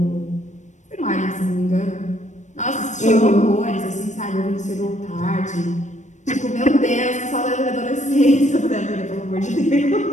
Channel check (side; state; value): right; late; 0.35 ms